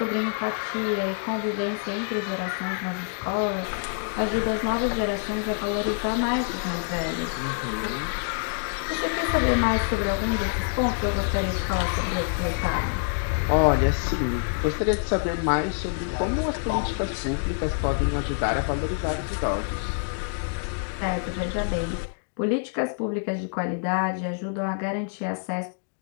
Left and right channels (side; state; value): right; silent; digital silence